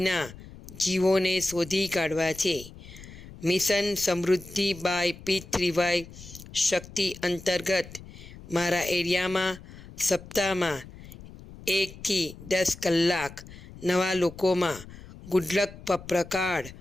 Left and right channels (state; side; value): noise; left; rumble, 17 dB below the sound